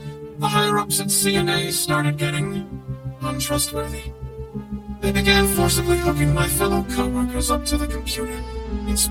the higher-ups at C&A started getting untrustworthy. They began forcibly hooking my fellow co-workers up to the computer in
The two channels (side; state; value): both; identical; correlation 1.00